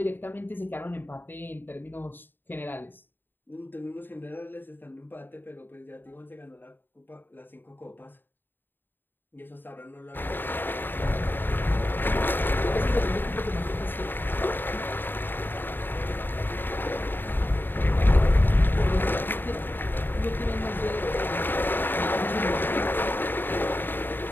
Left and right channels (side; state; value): right; late; 0.094 ms